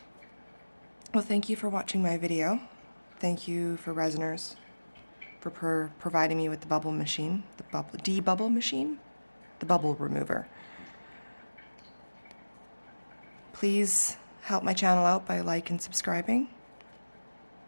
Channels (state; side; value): inverted; both; correlation -1.00